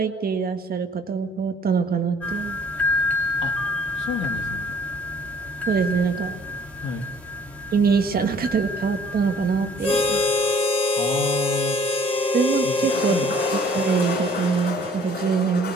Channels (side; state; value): both; normal; correlation 0.56